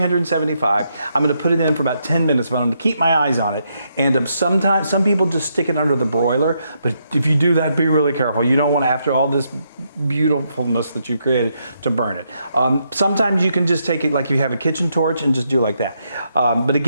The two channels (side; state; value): both; inverted; correlation -0.78